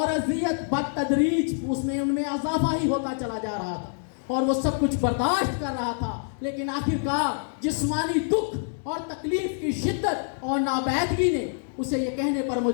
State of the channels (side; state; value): right; silent; digital silence